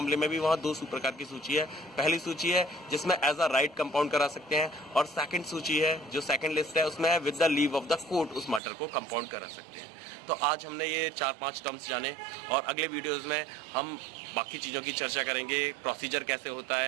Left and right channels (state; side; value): drops out; left; at 8.6 s